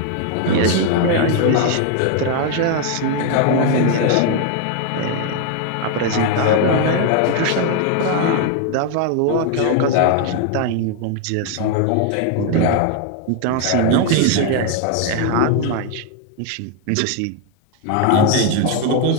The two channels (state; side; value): different; both; correlation 0.01